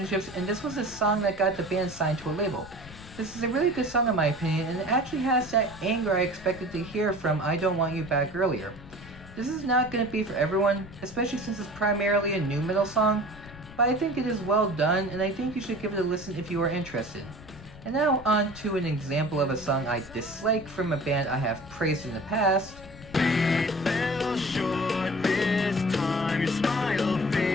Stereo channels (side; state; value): left; noise; rumble, 18 dB below the sound